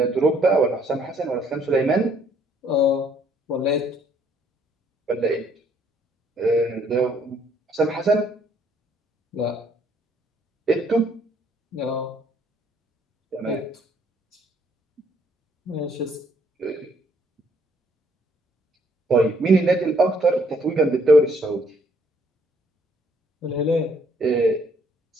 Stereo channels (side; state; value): both; normal; correlation 0.65